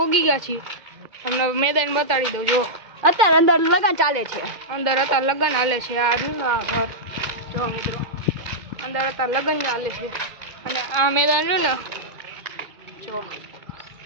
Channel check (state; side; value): late; left; 2.2 ms